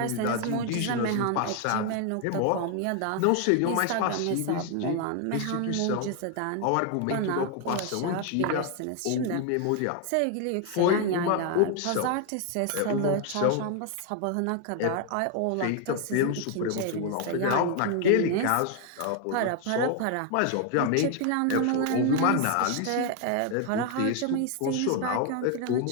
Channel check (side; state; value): both; different; correlation 0.00